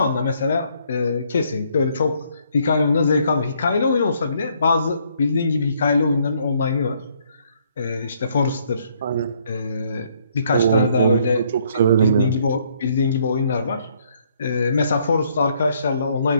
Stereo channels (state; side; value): inverted; both; correlation -0.68